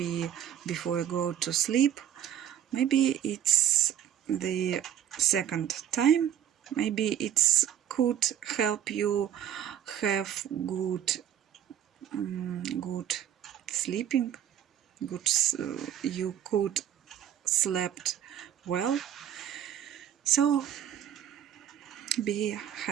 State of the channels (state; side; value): quieter; left; 10.2 dB